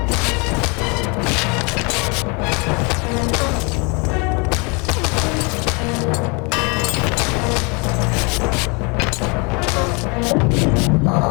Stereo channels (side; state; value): right; quieter; 31.0 dB